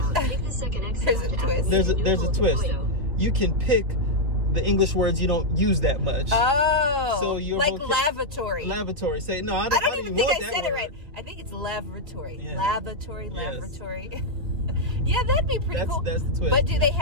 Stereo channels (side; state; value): left; late; 3.4 ms